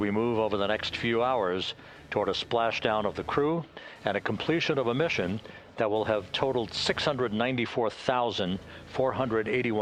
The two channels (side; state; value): both; identical; correlation 1.00